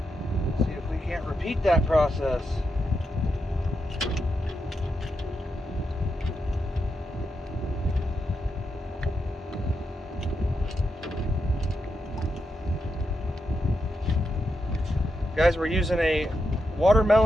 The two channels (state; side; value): normal; both; correlation 0.85